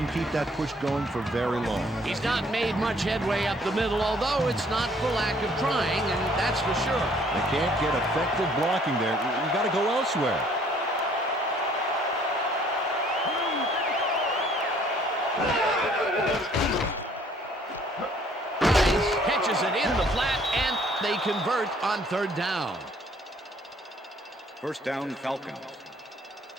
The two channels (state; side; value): normal; both; correlation 0.60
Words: keep that push going for very long. He's not made much headway up the middle, although it's not for lack of trying, and that's for sure. They can't get effective blocking there. You got to go elsewhere. Catches it in the flat, and they convert on third down. First down, Falcons.